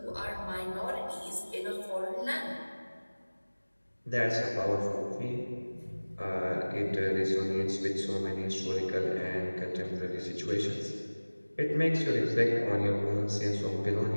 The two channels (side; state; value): both; inverted; correlation -1.00